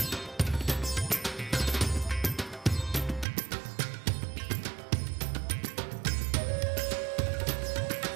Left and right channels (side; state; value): left; drops out; at 3.2 s